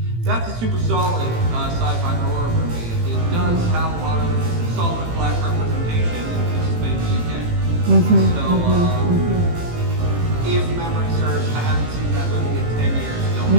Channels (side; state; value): left; late; 18 ms